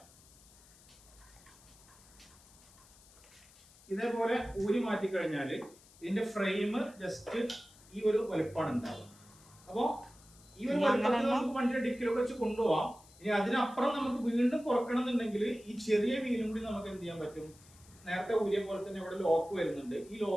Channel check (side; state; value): left; noise; hiss, 24 dB below the sound